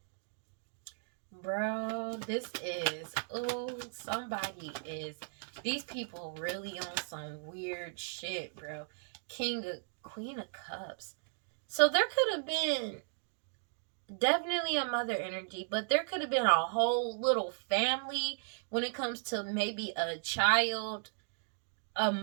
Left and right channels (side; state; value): left; silent; digital silence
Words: Bro, this is, these people really on some weird shit, bro. Queen of Cups. So there could have been definitely a mother energy, but there could have been a whole little family when it comes to maybe a child, a